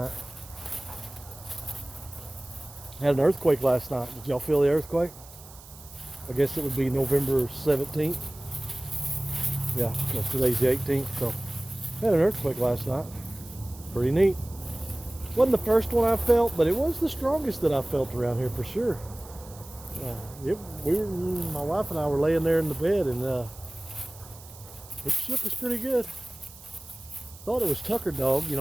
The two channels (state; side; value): noise; right; hiss, 20 dB below the sound